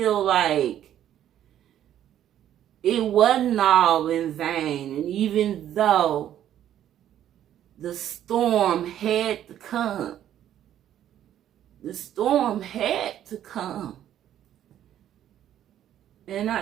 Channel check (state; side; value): quieter; left; 11.1 dB